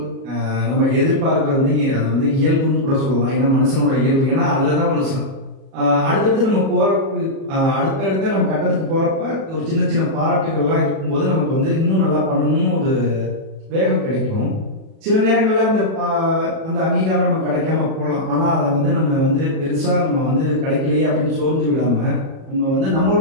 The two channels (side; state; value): left; late; 37 ms